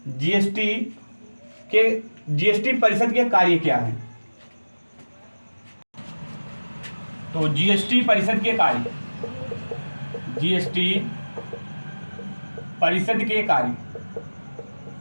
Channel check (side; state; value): both; inverted; correlation -1.00